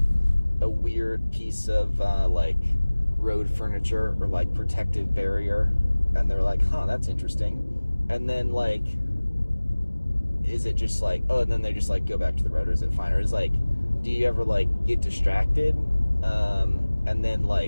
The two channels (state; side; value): inverted; both; correlation -1.00